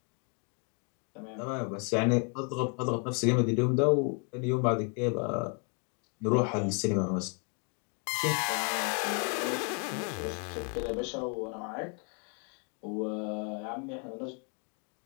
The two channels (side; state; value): right; quieter; 36.1 dB